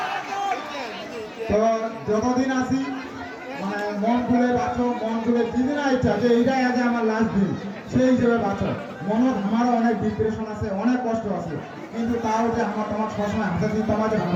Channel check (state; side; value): identical; both; correlation 1.00